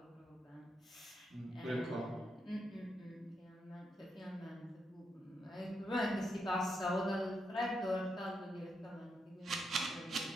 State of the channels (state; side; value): normal; both; correlation 0.82